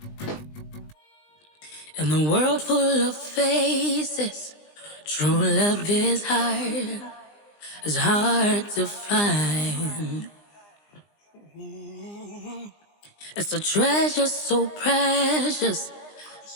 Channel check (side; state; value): right; late; 20 ms